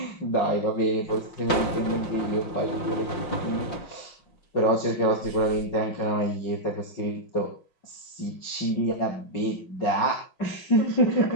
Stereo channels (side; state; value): right; late; 5.7 ms